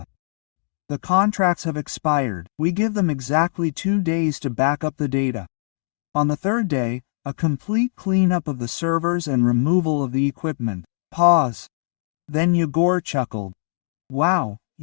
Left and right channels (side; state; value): right; silent; digital silence